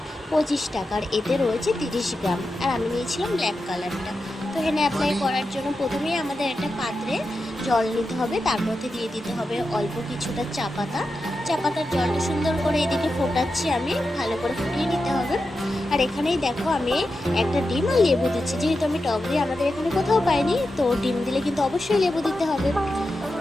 25 টাকার। এতে রয়েছে 30 গ্রাম, আর আমি নিয়েছিলাম ব্ল্যাক কালারটা। তো হেনা অ্যাপ্লাই করার জন্য প্রথমেই আমাদের একটা পাত্রে জল নিতে হবে, তার মধ্যে দিয়ে দিতে হবে অল্প কিছুটা চা পাতা। চা পাতার জলটা সুন্দর করে এদিকে ফোটাচ্ছি আমি, ভালো করে ফুটিয়ে নিতে হবে। আর এখানেই দেখো আমি একটা ডিম আর লেবু দিচ্ছি, যেহেতু আমি টক দিয়ে আমাদের এখানে কোথাও পাইনি, তো ডিম দিলে কিন্তু অবশ্যই লেবু দিতে হবে।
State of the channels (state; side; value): normal; both; correlation 0.90